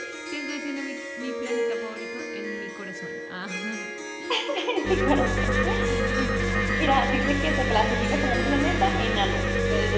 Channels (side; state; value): both; identical; correlation 1.00